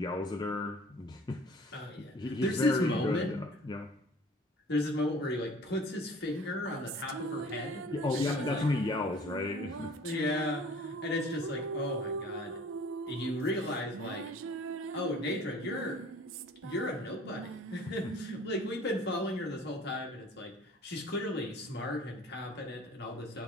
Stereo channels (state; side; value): normal; both; correlation 0.49